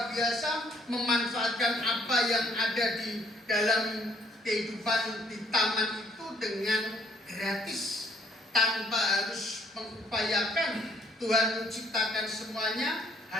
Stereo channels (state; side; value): normal; both; correlation 0.65